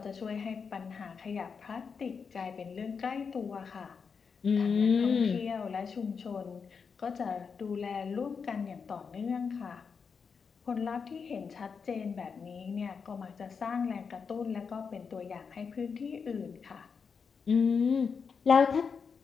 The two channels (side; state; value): right; quieter; 5.8 dB